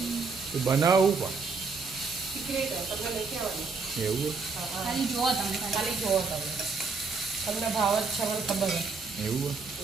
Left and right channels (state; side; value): quieter; left; 4.5 dB